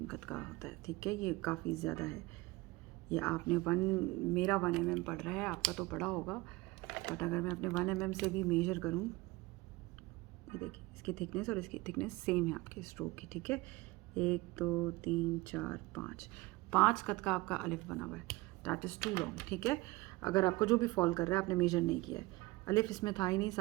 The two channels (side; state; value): left; quieter; 21.6 dB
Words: कत का होता है, ठीक है। ये काफ़ी ज़्यादा है। ये आपने मेरा 1 mm पड़ रहा है, आपका तो पड़ा होगा, बट अगर मैं अपने 1 mm से भी मेजर करूँ, ये देखिए इसकी थिकनेस और इसकी थिकनेस सेम है आपके स्ट्रोक की, ठीक है। 1 2 3 4 5 कत का आपका अलिफ बना हुआ है। दैट इज़ टू लॉन्ग, ठीक है। अगर आपको जो भी फॉल कर रहा है, आपने मेजर नहीं किया है। अलिफ इसमें था ही नहीं,